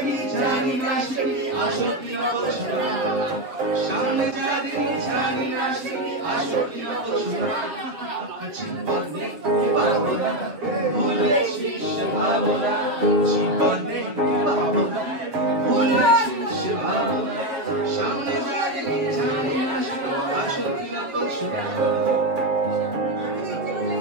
জানি না সে কি আসল কি নকল সোনা। সামনে যা দেখি জানি না সে কি আসল কি নকল সোনা। জীবনে পাবো না, ভুলেছিস সে ভাবনা, জীবনে পাবো না, ভুলেছিস সে ভাবনা। সামনে যা দেখি জানি না সে কি আসল কি নকল সোনা।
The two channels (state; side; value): late; left; 7.1 ms